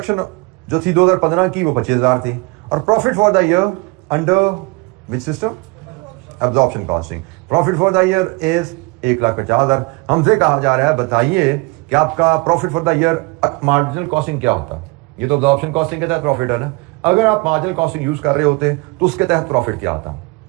जो थी 2015 की वो 25,000 थी। और profit for the year under which system? Absorption costing. Profit for the year is 1,50,000। हमसे कहा जा रहा है बताइए कि आपका profit for the year marginal costing क्या होता? ये तो एब्जॉर्प्शन कॉस्टिंग के तहत प्रॉफिट है ना। अगर आप मार्जिनल कॉस्टिंग यूज कर रहे होते तो उसके तहत प्रॉफिट क्या आता?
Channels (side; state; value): left; quieter; 26.4 dB